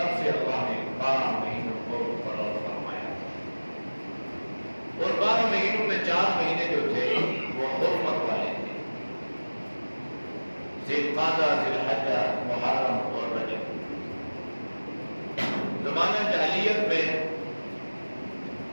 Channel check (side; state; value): both; inverted; correlation -1.00